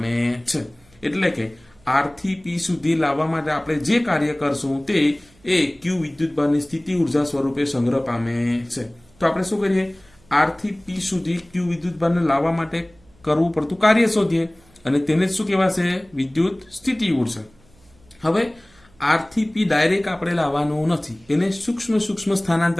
છે. એટલે કે આર થી પી સુધી લાવવા માટે આપણે જે કાર્ય કરશું તે એ ક્યુ વિદ્યુતભારની સ્થિતિ ઉર્જા સ્વરૂપે સંગ્રહ પામે છે. તો આપણે શું કરીએ, આર થી પી સુધી ક્યુ વિદ્યુતભારને લાવવા માટે કરવું પડતું કાર્ય શોધીએ અને તેને જ શું કહેવાશે, વિદ્યુત સ્થિતિ ઉર્જા. હવે આર થી પી ડાયરેક્ટ આપણે લાવવાનું નથી, એને સૂક્ષ્મ સૂક્ષ્મ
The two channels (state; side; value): noise; right; hum, 30 dB below the sound